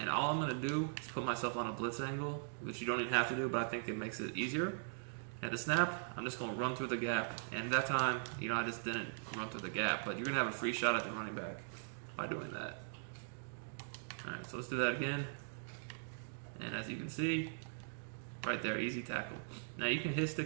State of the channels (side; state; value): left; silent; digital silence